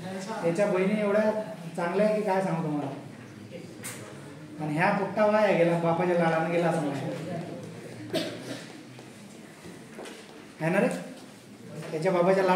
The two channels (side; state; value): both; identical; correlation 1.00